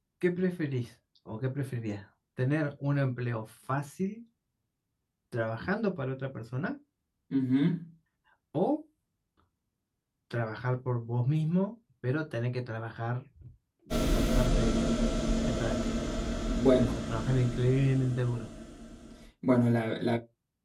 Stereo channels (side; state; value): both; identical; correlation 1.00